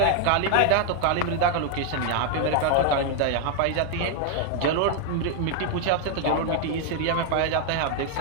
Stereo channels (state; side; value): different; both; correlation 0.00